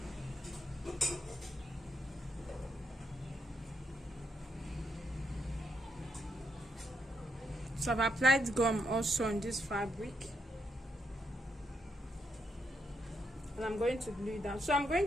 So I've applied gum also on this fabric and I'm going to glue it down. So I'm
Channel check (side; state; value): both; normal; correlation 0.78